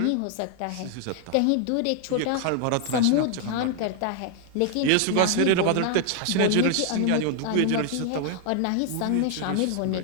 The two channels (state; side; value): different; both; correlation 0.00